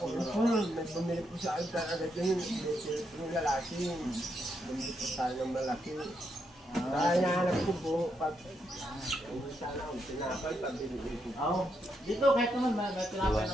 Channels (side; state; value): both; normal; correlation 0.80